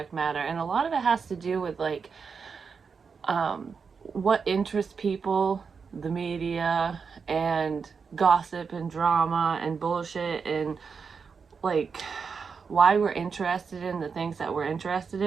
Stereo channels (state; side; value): quieter; left; 5.6 dB